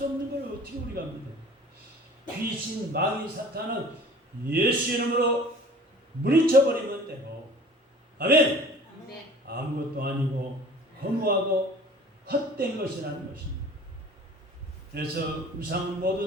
없는 걸 어떻게 우리가 믿어요? 귀신, 마귀, 사탄은 예수 이름으로 물리쳐버리면 되고 아멘! 아무것도 아니고 허무하고 헛된 것이라는 것입니다. 그래서 우상은 모두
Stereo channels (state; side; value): normal; both; correlation 0.46